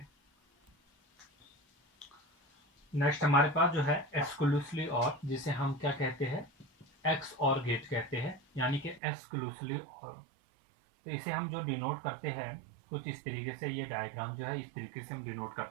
नेक्स्ट हमारे पास जो है एक्सक्लूसिवली और, जिसे हम क्या कहते हैं, एक्स और गेट कहते हैं, यानी कि एक्सक्लूसिवली और। तो इसे हम जो डिनोट करते हैं कुछ इस तरीके से, ये डायग्राम जो है इस तरीके से हम डिनोट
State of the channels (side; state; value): left; drops out; at 9.0 s